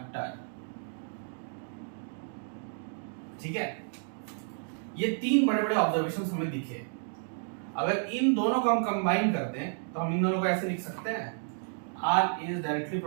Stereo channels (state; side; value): silent; left; digital silence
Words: ठीक है, ये तीन बड़े बड़े ऑब्जर्वेशंस हमें दिखे। अगर इन दोनों को हम कंबाइन करते हैं तो हम इन दोनों को ऐसे लिख सकते हैं, R is directly